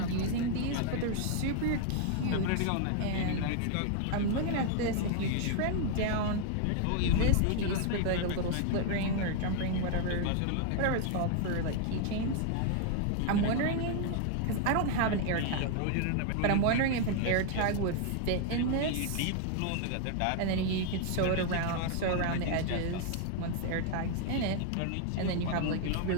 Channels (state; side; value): different; both; correlation 0.00